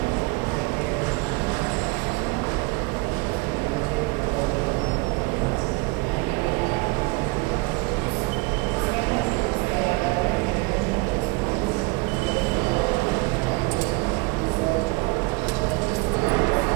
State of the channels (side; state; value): left; quieter; 25.6 dB